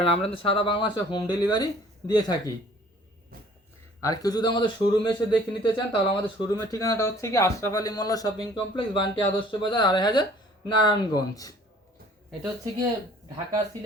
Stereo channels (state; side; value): normal; both; correlation 0.53